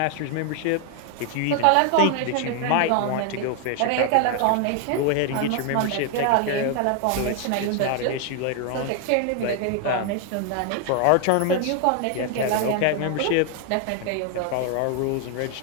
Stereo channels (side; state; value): both; different; correlation 0.00